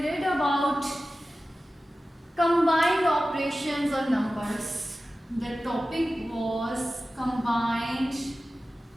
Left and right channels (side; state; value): both; normal; correlation 0.95